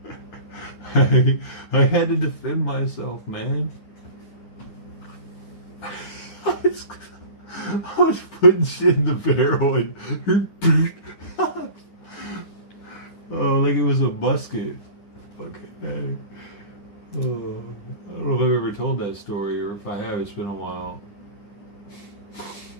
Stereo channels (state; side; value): late; right; 9.9 ms